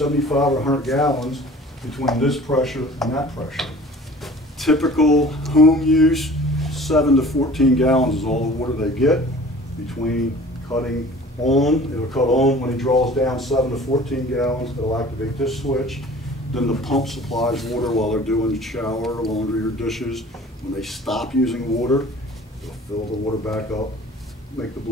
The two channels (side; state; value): both; normal; correlation 0.46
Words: or 100 gallons between this pressure and that pressure. Typical home use, 7 to 14 gallons is all the water they get between cutting on. It'll cut on when he draws down 7 to 14 gallons. It'll activate this switch. Then the pump supplies water while they're doing the shower, laundry, or dishes. When they stop using water, they'll fill the water back up, make the